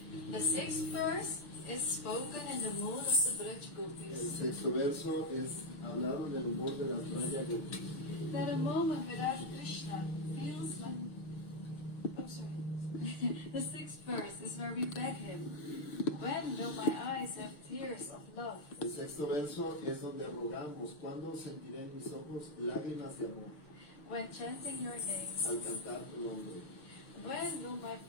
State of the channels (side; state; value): right; late; 6.3 ms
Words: The sixth verse is spoken in the mood of the Braj El Gopis. sexto verso es hablado en el humor de las Braya Gopis. That a moment without Krishna feels like... Oh, sorry. The sixth verse is where we beg him, when will my eyes have tears of love? El sexto verso es donde rogamos, ¿cuándo sentiré en mis ojos lágrimas de amor When chanting your names, al cantar tu nombre? when will my